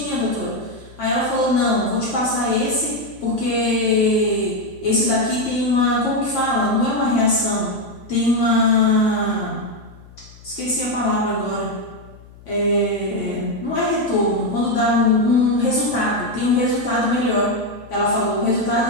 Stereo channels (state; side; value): noise; left; hum, 22 dB below the sound